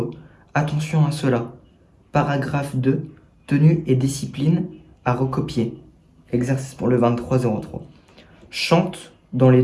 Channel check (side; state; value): both; identical; correlation 1.00